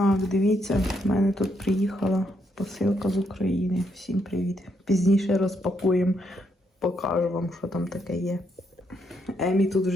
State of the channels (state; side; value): normal; both; correlation 0.76